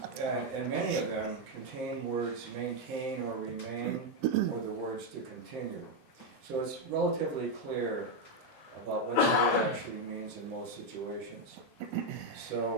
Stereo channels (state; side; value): normal; both; correlation 0.03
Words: And many of them contain words maintain or remain, or the words to continue. So it's relatively clear about what the word actually means in most situations.